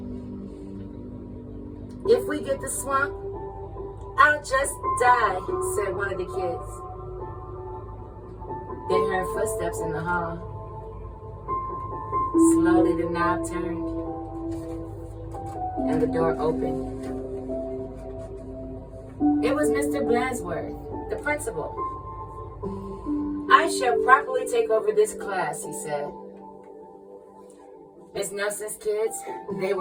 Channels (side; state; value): both; identical; correlation 1.00